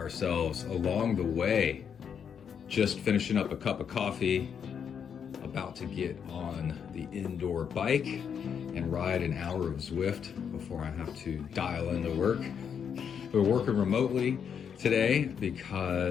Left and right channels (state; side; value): quieter; right; 7.5 dB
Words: along the way. Just finishing up a cup of coffee, about to get on the indoor bike and ride an hour of Zwift before I have to dial into work. We're working remotely today